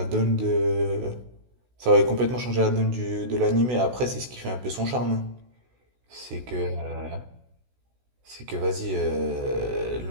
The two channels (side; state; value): left; late; 16 ms